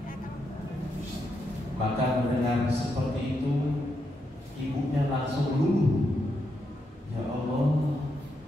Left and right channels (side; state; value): both; normal; correlation 0.82